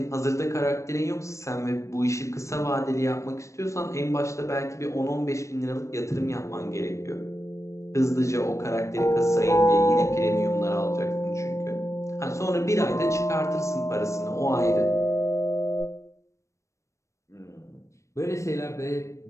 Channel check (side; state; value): right; late; 0.15 ms